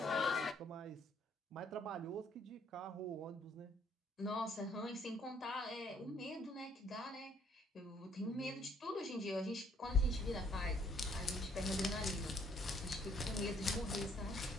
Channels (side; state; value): both; normal; correlation 0.64